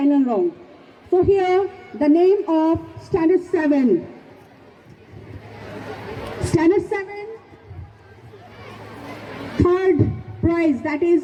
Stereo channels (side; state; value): both; identical; correlation 1.00